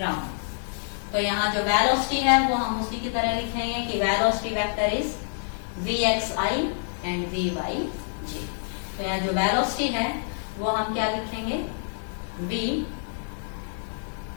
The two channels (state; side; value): silent; right; digital silence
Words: तो यहाँ जो वेलोसिटी है वो हम उसी की तरह लिखेंगे कि velocity vector is vxi and vyj। तो यहाँ जो वेलोसिटी है वो हम क्या लिखेंगे, v